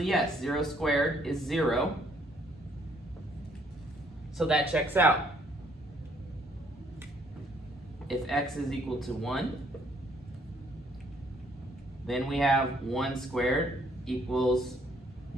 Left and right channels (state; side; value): normal; both; correlation 0.66